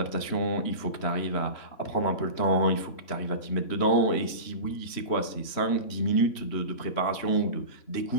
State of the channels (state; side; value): late; right; 3.1 ms